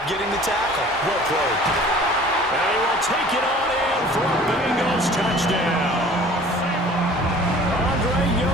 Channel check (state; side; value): normal; both; correlation 0.47